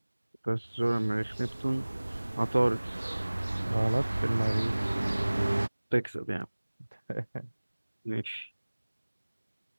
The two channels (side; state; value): both; inverted; correlation -1.00